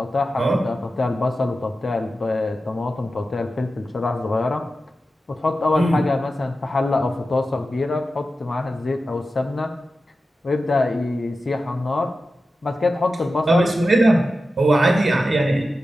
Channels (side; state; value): both; normal; correlation 0.92